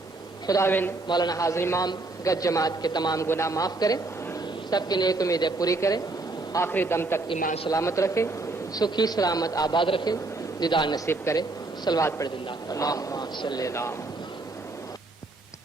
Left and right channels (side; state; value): left; quieter; 3.3 dB